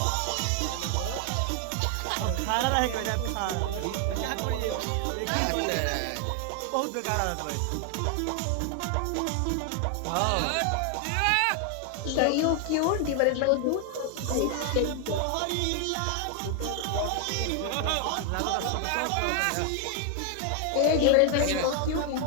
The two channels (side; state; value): both; different; correlation 0.00